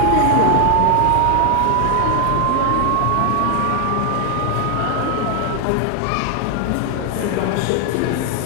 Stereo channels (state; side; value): different; both; correlation 0.00